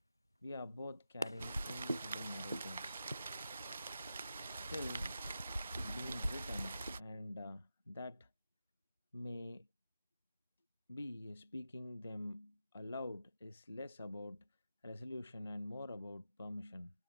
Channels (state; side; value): inverted; both; correlation -0.90